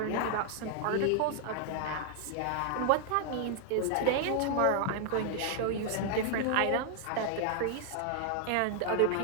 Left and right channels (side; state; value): both; different; correlation -0.01